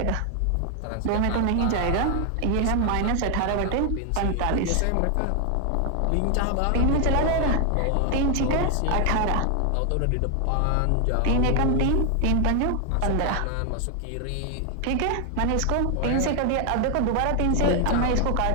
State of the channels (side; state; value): both; different; correlation 0.00